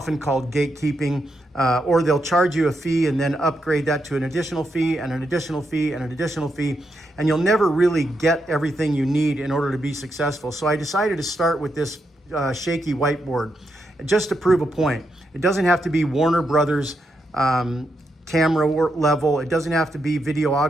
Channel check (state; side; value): normal; both; correlation 0.82